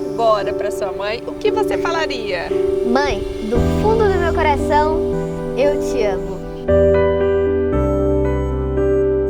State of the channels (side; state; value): both; identical; correlation 1.00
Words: para sua mãe, o que você falaria? Mãe, do fundo do meu coração, eu te amo.